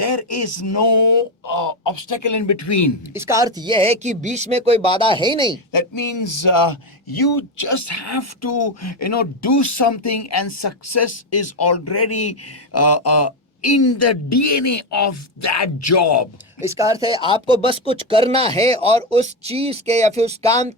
is no obstacle in between. इसका अर्थ ये है कि बीच में कोई बाधा है ही नहीं। That means you just have to do something, and success is already in the DNA of that job. इसका अर्थ है आपको बस कुछ करना है और उस चीज के या फिर उस काम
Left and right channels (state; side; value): normal; both; correlation 0.10